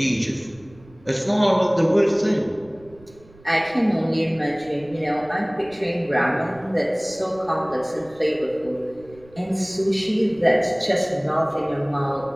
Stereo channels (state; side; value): noise; right; rumble, 25 dB below the sound